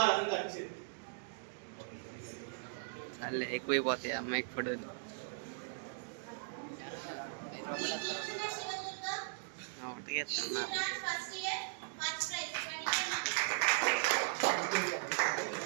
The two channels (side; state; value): left; silent; digital silence